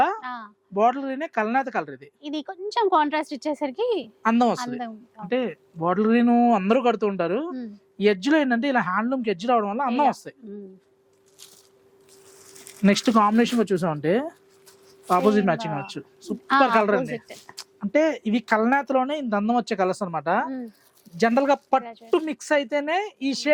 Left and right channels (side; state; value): both; identical; correlation 1.00